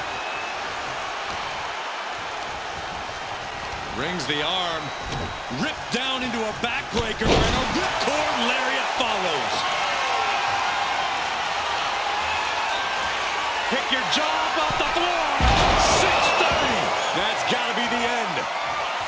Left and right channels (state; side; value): identical; both; correlation 1.00